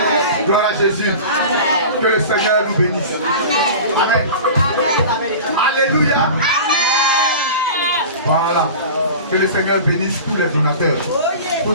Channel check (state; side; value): inverted; both; correlation -0.35